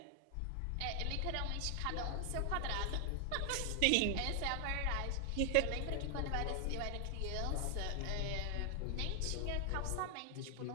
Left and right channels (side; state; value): both; different; correlation 0.00